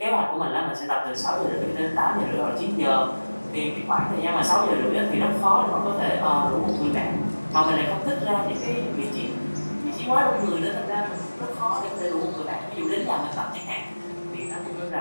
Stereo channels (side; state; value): both; inverted; correlation -1.00